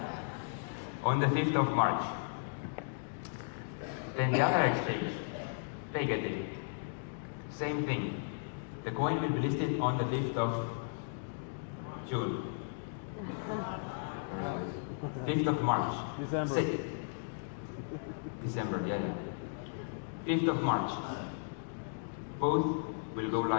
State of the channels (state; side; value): silent; right; digital silence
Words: On the 5th of March. Then the other exchange, DAGCoin. Same thing. The coin will be listed on the 5th of June. 5th of March. December. December, yeah. 5th of March. Both will go